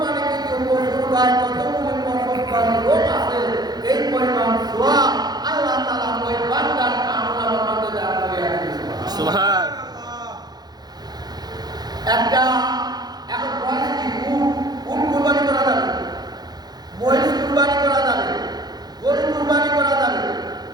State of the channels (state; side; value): late; left; 0.19 ms